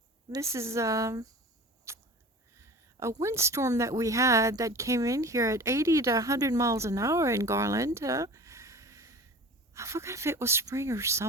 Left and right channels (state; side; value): normal; both; correlation 0.38